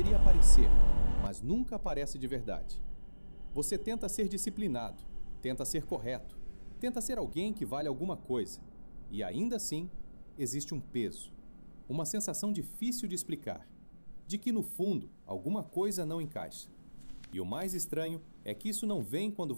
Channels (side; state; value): both; inverted; correlation -1.00